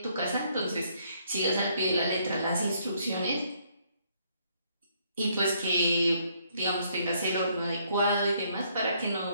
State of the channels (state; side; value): inverted; both; correlation -0.69